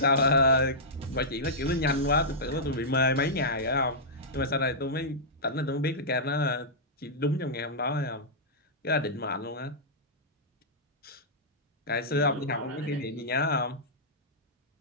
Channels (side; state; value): both; normal; correlation -0.12